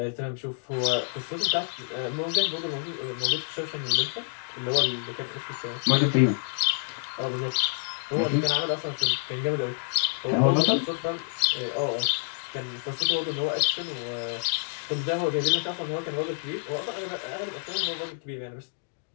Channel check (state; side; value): silent; right; digital silence